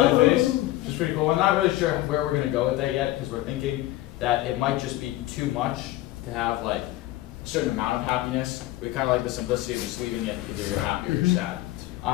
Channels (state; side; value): quieter; right; 16.4 dB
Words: face, which is pretty cool. I'm not really sure where we're going to go with that yet, because we're thinking that it might just be too much to have like a certain amount of happiness. We kind of like the simplicity of just leaving it either you're happy or you're sad.